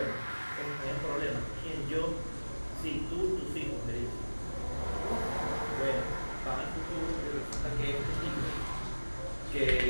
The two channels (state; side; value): inverted; both; correlation -1.00